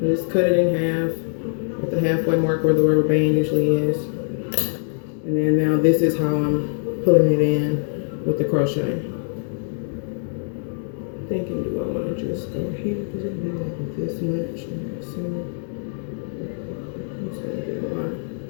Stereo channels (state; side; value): silent; right; digital silence